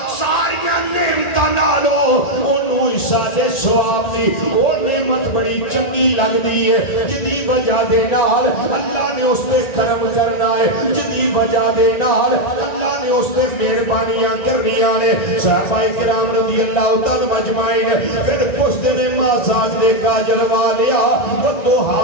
ساریاں نعمتاں نالو انہوں سادے سواب دی وہ نعمت بڑی چنگی لگ دی ہے جدی وجہ دے نال اللہ نے اس پہ کرم کرنا ہے جدی وجہ دے نال اللہ نے اس پہ مہربانیاں کرنی آنے صحابہ کرام رضی اللہ تعالی مجمعین پھر پشت نے مازاج دے کاجل والیا وہ دوہا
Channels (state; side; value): late; right; 1.9 ms